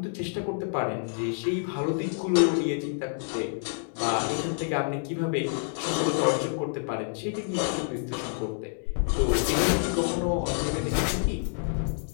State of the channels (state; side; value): silent; right; digital silence